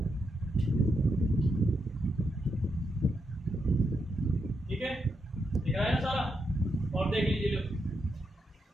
ठीक है, दिख रहा है ना सारा। और देख लीजिए लो,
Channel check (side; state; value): both; normal; correlation 0.83